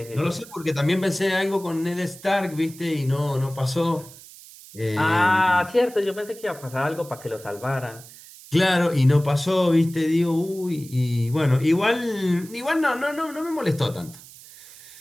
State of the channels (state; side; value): noise; right; hiss, 19 dB below the sound